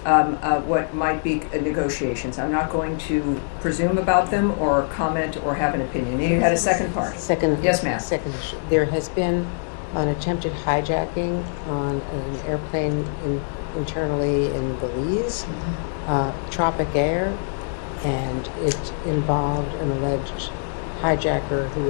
what might be negotiations. I'm not going to presume about them or comment or have an opinion. You had a second part. Yes, ma'am. Second issue. There has been an attempted hijacking on an airplane internally in Belize, Tropic Air, and it involved an alleged hijacker who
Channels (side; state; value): right; silent; digital silence